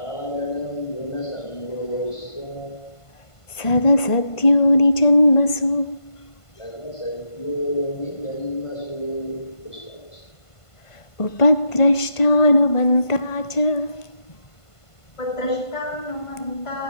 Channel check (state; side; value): late; right; 1.5 ms